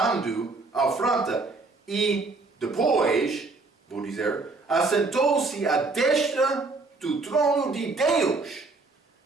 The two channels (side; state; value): left; quieter; 3.7 dB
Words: a afronta, e depois, vou dizer, assentou-se à destra do trono de Deus.